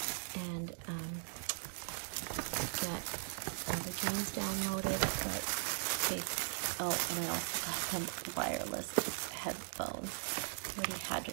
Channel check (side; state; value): left; silent; digital silence